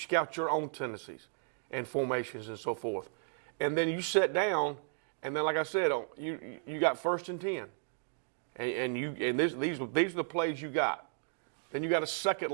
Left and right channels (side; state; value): left; silent; digital silence